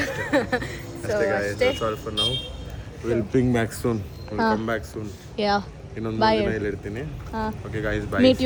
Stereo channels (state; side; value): identical; both; correlation 1.00